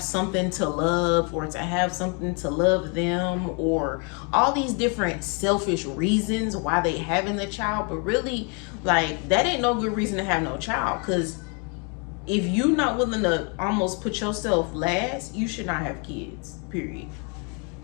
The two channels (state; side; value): quieter; right; 35.5 dB